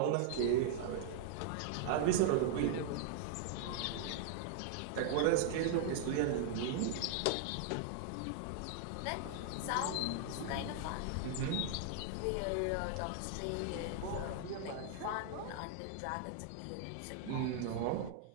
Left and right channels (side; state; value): both; different; correlation 0.00